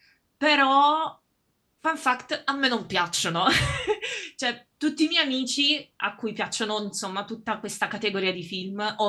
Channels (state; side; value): identical; both; correlation 1.00